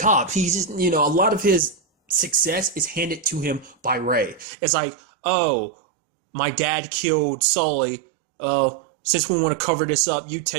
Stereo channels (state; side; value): drops out; left; at 4.5 s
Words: He's just, a lot of his success is handed to him by Ray. It's like, oh, my dad killed Sully. Since we want to cover this up, you